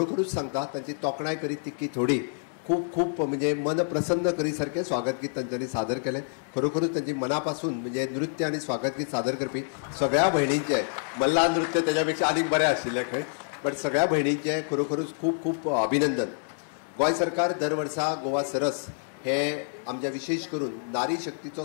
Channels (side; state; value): right; silent; 60 dB below the other